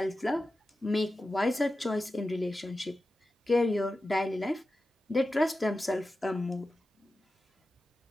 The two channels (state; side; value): normal; both; correlation 0.93